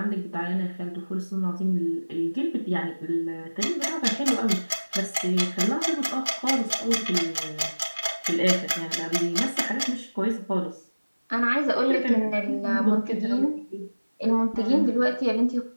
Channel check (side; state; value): both; inverted; correlation -1.00